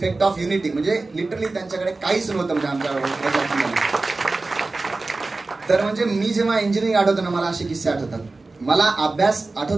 ऑफ युनिटी. म्हणजे लिटरली त्यांच्याकडे काहीच नव्हतं म्हणजे आमच्या. तर म्हणजे मी जेव्हा इंजिनिअरिंग आठवतो ना मला असे किस्से आठवतात. मला अभ्यास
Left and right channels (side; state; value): left; quieter; 3.4 dB